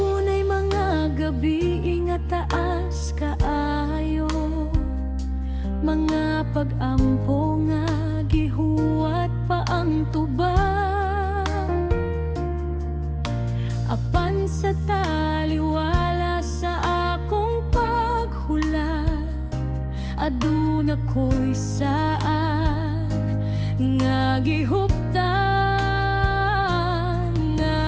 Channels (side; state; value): both; identical; correlation 1.00